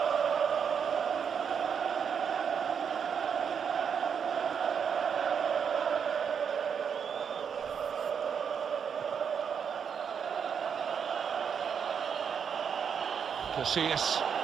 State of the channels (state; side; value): quieter; left; 7.1 dB